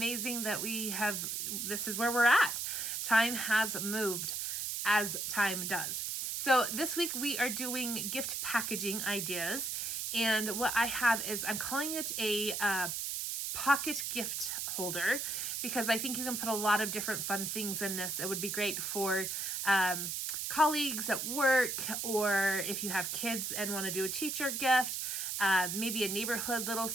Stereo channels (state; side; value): noise; right; hiss, 2 dB below the sound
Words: that this is where we're at. Time has moved, as time does. So this week we are doing gift packaging ideas, and what I have is, I'm calling it a pocket gift holder, because I think you can put a lot of different fun things in this. It would be great for colleagues at work, or if you have kids and want to do a teacher gift, maybe a neighborhood little